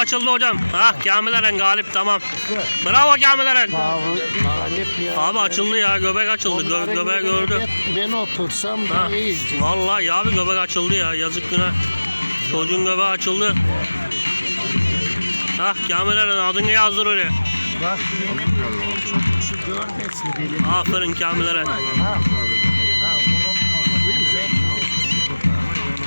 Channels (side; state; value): both; inverted; correlation -1.00